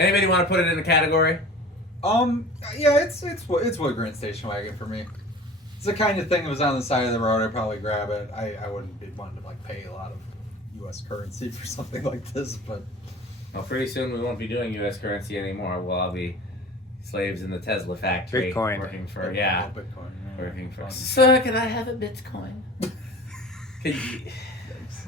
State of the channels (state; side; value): normal; both; correlation 0.41